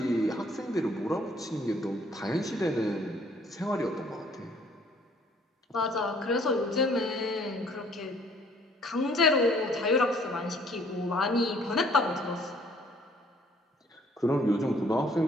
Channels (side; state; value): both; normal; correlation 0.61